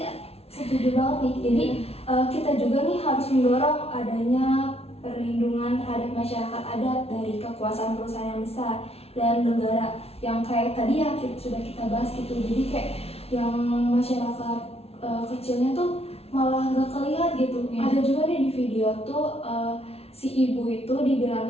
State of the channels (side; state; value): right; late; 0.30 ms